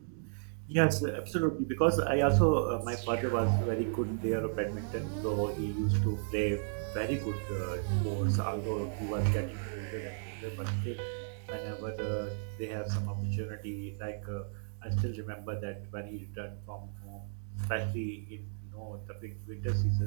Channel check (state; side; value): silent; left; digital silence